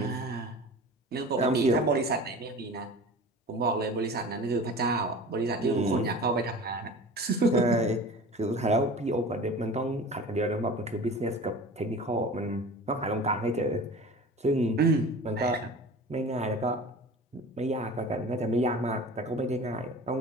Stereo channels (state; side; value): normal; both; correlation 0.38